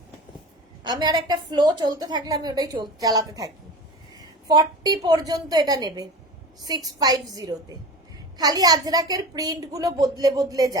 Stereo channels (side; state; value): both; normal; correlation 0.32